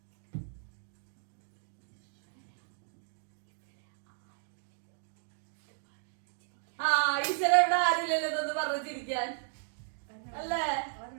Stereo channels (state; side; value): silent; left; digital silence